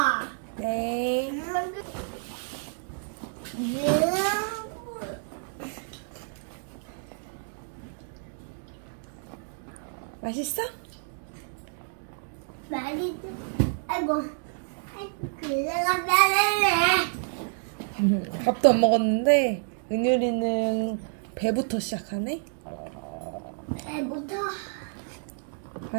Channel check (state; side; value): silent; left; digital silence